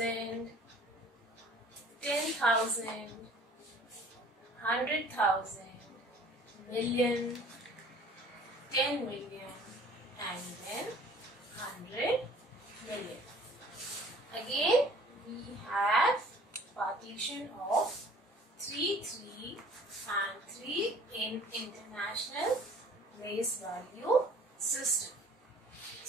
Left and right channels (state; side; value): normal; both; correlation 0.51